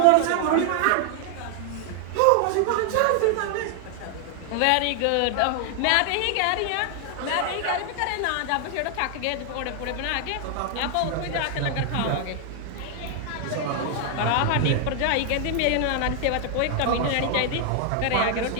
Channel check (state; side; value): different; both; correlation 0.00